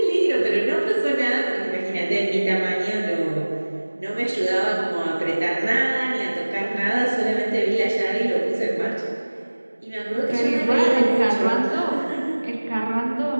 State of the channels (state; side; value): inverted; both; correlation -1.00